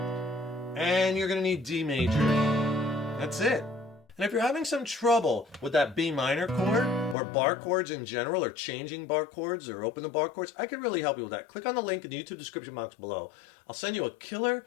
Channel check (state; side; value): drops out; right; at 7.2 s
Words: And you're going to need D major. That's it. And if you're having some trouble with that B minor chord or bar chords in general, or changing bar chords or open the bar chords, I can really help you with that. Click on the link in the YouTube description box below. I'll send you a killer